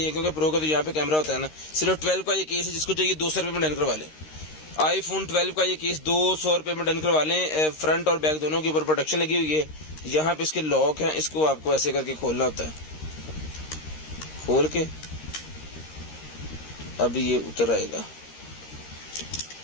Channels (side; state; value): right; late; 13 ms